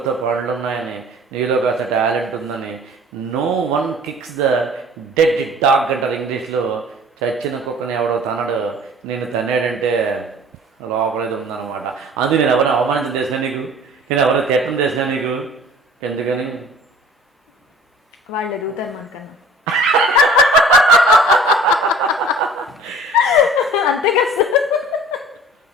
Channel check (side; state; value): both; normal; correlation 0.48